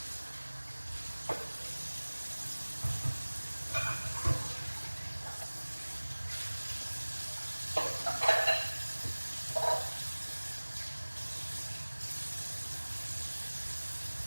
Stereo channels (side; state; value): both; inverted; correlation -1.00